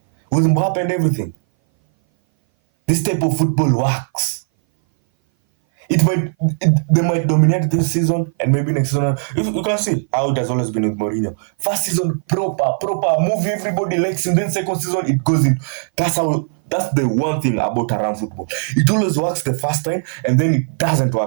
With Mbappe and everything. This type of football works. They might dominate this season, and maybe next season. You can see how it has always been with Mourinho. First season, proper, move everybody likes him. Then second season, it goes in. That's the one thing about around football. It always works the first time, and then it doesn't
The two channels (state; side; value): silent; left; 59 dB below the other